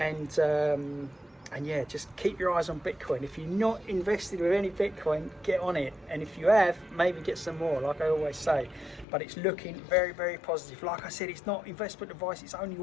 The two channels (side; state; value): right; drops out; at 9.1 s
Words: And yeah, just keep your eyes on Bitcoin. If you're not invested with any Bitcoin, get on it. And if you have, maybe get some more, like I always say. But it's looking very, very positive. Like I said, it's not investment advice. It's only